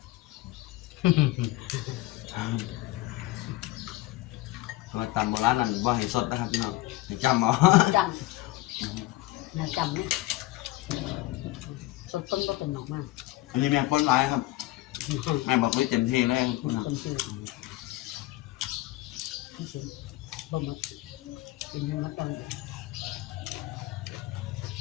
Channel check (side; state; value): right; quieter; 18.0 dB